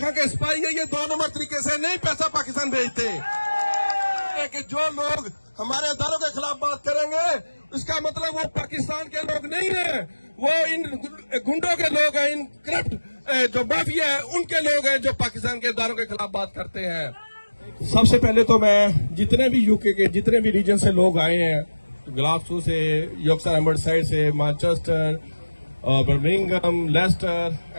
के स्पाई है, ये 2 नंबर तरीके से नहीं पैसा पाकिस्तान भेजते। कि जो लोग हमारे अदारों के खिलाफ बात करेंगे इसका मतलब वो पाकिस्तान के लोग नहीं है, वो इन गुंडों के लोग हैं, इन करप्ट जो माफिया है उनके लोग हैं जो पाकिस्तान के अदारों के खिलाफ बात करते हैं। सबसे पहले तो मैं जितने भी यूके के जितने भी रीजन से लोग आए हैं, ग्लासगो से, यॉर्कशायर एम्बर्साइड से, Manchester, Birmingham, Leicester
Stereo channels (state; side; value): inverted; both; correlation -1.00